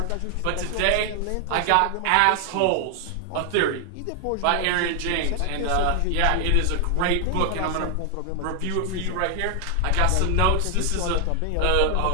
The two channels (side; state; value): both; different; correlation 0.00